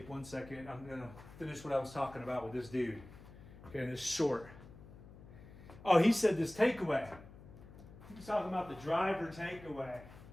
1 second. I'm going to finish what I was talking about with this dude. Okay, this short. Oh, he said this takeaway. He was talking about the driver takeaway.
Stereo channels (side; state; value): left; noise; hum, 18 dB below the sound